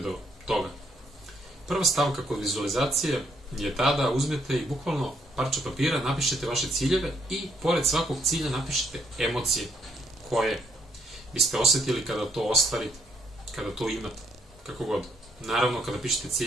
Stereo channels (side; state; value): both; normal; correlation 0.71